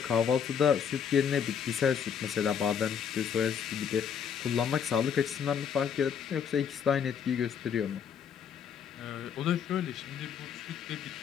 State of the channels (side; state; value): right; quieter; 7.5 dB